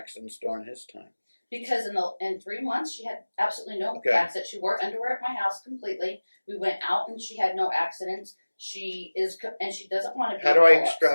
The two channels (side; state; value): both; inverted; correlation -1.00